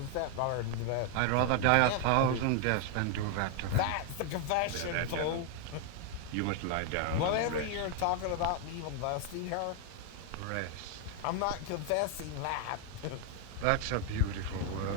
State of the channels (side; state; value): both; different; correlation 0.01